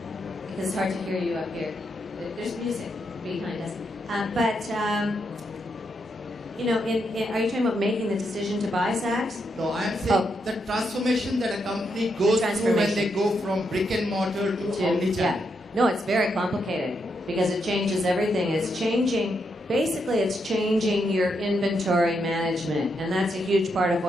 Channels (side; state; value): both; normal; correlation 0.81